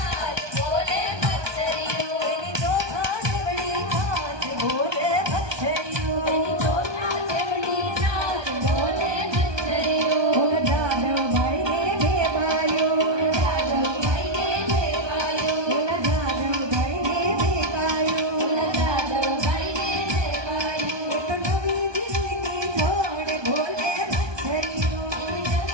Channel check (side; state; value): left; late; 1.2 ms